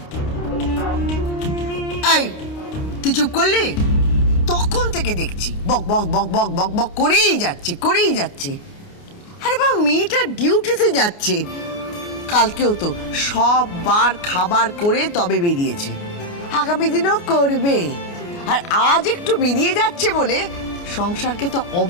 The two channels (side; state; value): right; late; 29 ms